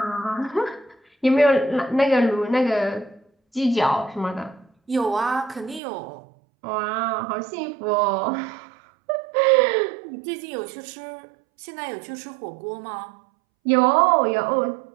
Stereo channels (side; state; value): left; drops out; at 5.8 s